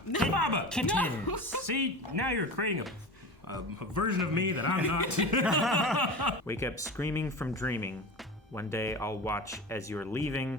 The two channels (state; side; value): normal; both; correlation 0.30